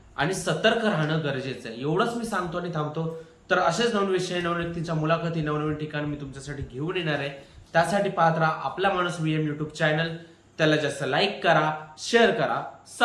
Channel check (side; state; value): both; identical; correlation 1.00